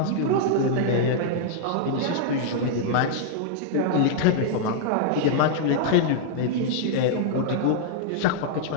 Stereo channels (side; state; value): both; different; correlation -0.01